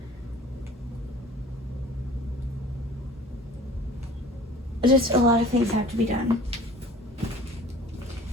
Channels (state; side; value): normal; both; correlation 0.47